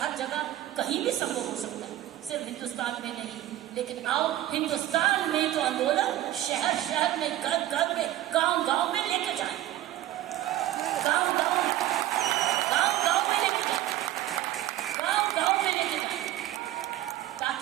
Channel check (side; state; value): left; quieter; 14.0 dB